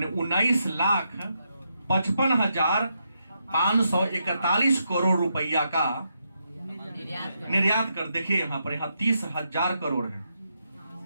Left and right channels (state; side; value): inverted; both; correlation -0.81